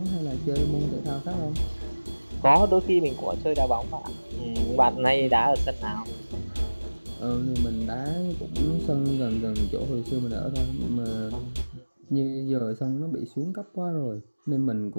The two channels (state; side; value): inverted; both; correlation -1.00